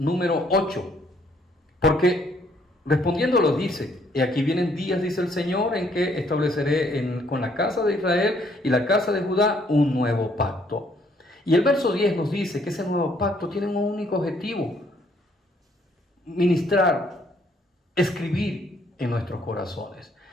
8, porque respondiéndolo dice: y aquí vienen días, dice el Señor, en que estableceré con la casa de Israel y la casa de Judá un nuevo pacto. Y el verso 10 nos dice que ese nuevo pacto tiene un único objetivo: ministrar, escribir en nuestros corazones.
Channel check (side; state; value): both; normal; correlation 0.66